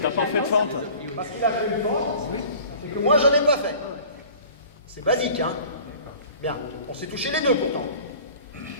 pas fait de fente. Parce qu'il a fait une fente, et que moi, j'en ai pas fait. C'est basique, hein? Bien, on s'est touché les deux pourtant.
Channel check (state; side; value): inverted; both; correlation -0.45